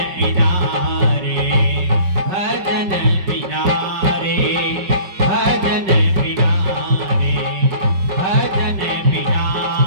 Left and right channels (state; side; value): late; left; 5.2 ms